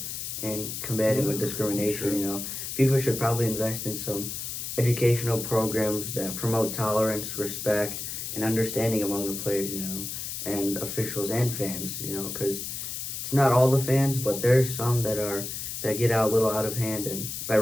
in combating with discrimination. Sure. You know, FIFA should probably invest in some educational programs that promote tolerance, respect, and understanding among the players, you know, and officials and fans, you know, because it's not all the fans, but there's some that get out a little out of hand, and by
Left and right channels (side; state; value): left; noise; hiss, 6 dB below the sound